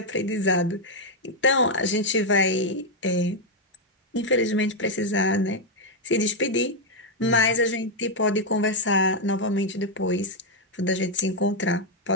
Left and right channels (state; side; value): normal; both; correlation 0.00